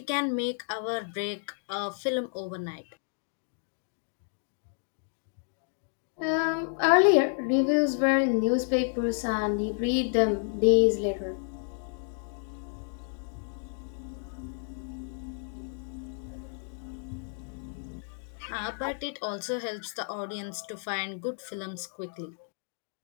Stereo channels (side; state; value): right; silent; 57 dB below the other